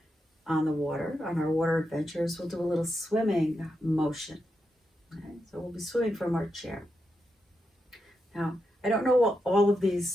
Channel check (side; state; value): both; normal; correlation 0.86